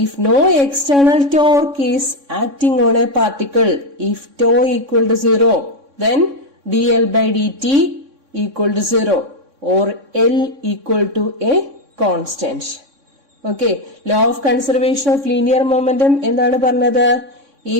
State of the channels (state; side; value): late; left; 3.6 ms